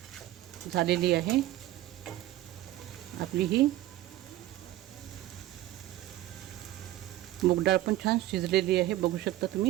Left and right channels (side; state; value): left; quieter; 15.1 dB